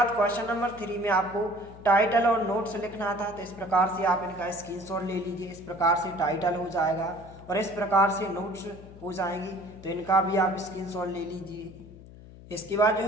क्वेश्चन नंबर 3 में आपको टाइटल और नोट्स लिखना था, तो इस प्रकार से आप इनका स्क्रीनशॉट ले लीजिए। इस प्रकार से टाइटल हो जाएगा और इस प्रकार से नोट्स हो जाएंगे, तो इनका भी आप स्क्रीनशॉट ले लीजिए। इसके बाद जो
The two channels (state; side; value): noise; left; hum, 18 dB below the sound